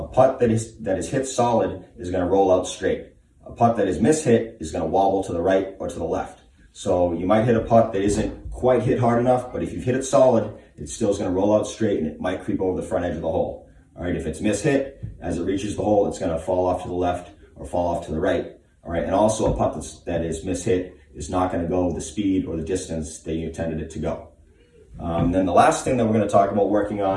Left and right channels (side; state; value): both; identical; correlation 1.00